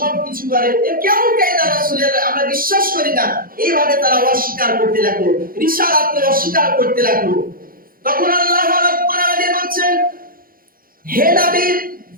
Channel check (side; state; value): left; late; 0.42 ms